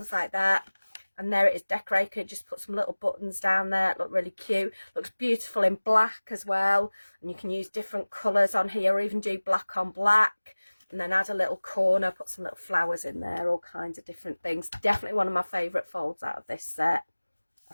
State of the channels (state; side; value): inverted; both; correlation -1.00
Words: like that. And there it is decorated. Just put some little buttons down there. It look really cute. Looks beautiful in black as well, and you can use different colours on here, or even do black on black. And then add a little corner, put some little flowers in there, all kinds of different things. Definitely one of my favourite folds out of this set. I